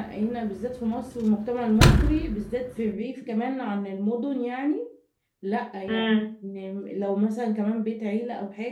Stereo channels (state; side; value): identical; both; correlation 1.00